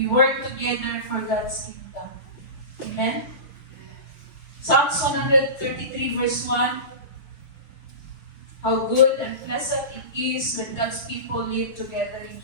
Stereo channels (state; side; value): late; right; 6.7 ms